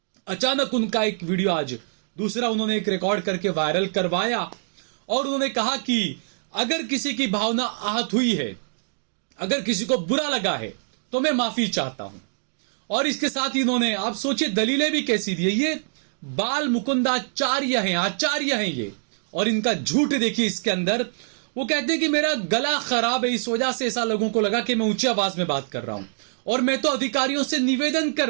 अचानक उनका एक वीडियो आज दूसरा उन्होंने एक रिकॉर्ड करके वायरल करवाया और उन्होंने कहा कि अगर किसी की भावना आहत हुई है, अगर किसी को बुरा लगा है, तो मैं माफी चाहता हूं। और इसके साथ ही इन्होंने, आप सोचिए दलीलें भी कैसी दी है। ये बाल मुकुंदाचार्य हैं, आचार्य हैं ये, और इनका झूठ देखिए इसके अंदर। वो कहते हैं कि मेरा गला खराब है, इस वजह से ऐसा लोगों को लगा कि मैं ऊंची आवाज में बात कर रहा हूं, और मैं तो अधिकारियों से निवेदन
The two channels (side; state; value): left; silent; digital silence